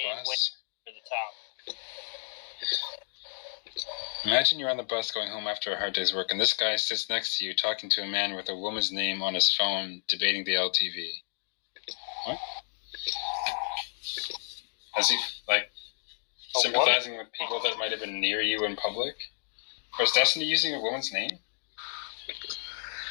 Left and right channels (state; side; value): silent; right; digital silence